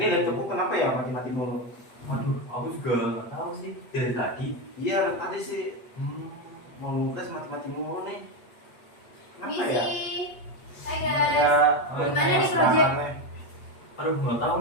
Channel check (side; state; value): right; late; 8.3 ms